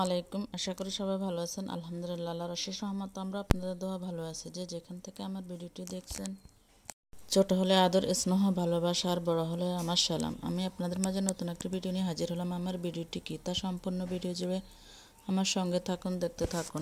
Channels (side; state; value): both; identical; correlation 1.00